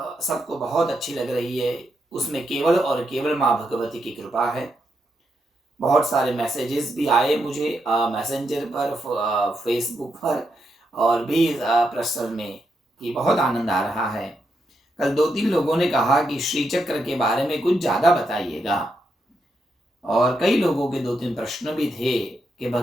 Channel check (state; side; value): normal; both; correlation 0.82